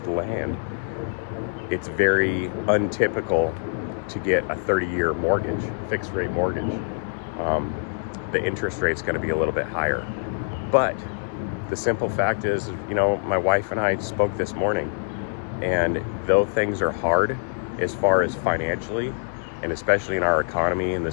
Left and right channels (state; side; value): silent; right; digital silence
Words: land, it's very untypical to get a 30-year mortgage, fixed rate mortgage. The interest rate's going to be a little bit higher. But the simple fact is, you know, my wife and I spoke this morning, and though things are hard as far as financially, and especially in our economy, and